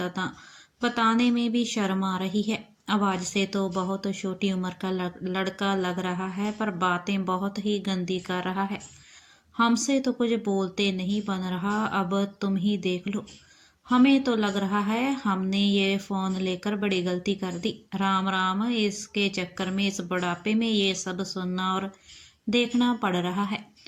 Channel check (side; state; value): both; identical; correlation 1.00